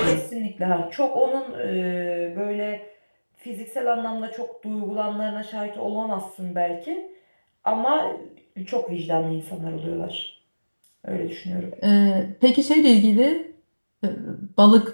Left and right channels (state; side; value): inverted; both; correlation -1.00